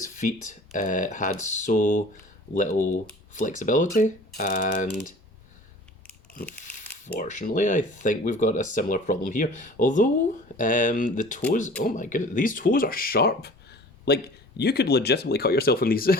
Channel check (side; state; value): both; normal; correlation 0.45